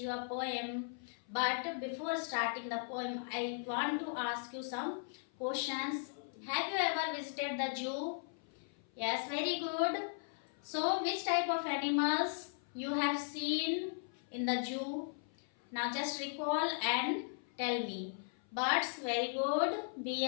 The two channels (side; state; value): right; silent; 53 dB below the other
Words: a poem. But before starting the poem, I want to ask you some questions. Have you ever visited the zoo? Yes, very good. So, which type of animals you have seen in the zoo? Now just recall and tell me. Birds, very good.